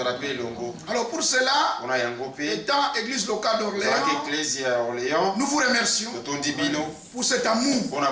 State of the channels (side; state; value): both; identical; correlation 1.00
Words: Alors pour cela, étant Église locale d'Orléans, nous vous remercions pour cet amour